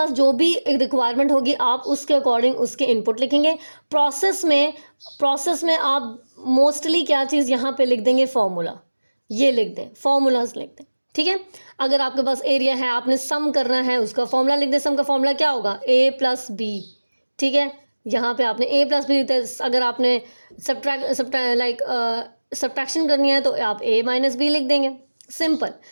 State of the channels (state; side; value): inverted; both; correlation -1.00